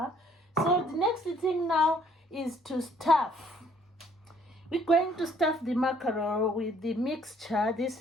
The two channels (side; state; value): both; normal; correlation 0.62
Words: So the next thing now is to stuff. We're going to stuff the mackerel with the mixture, this